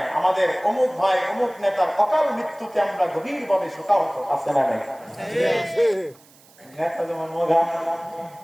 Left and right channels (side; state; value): right; noise; hiss, 27 dB below the sound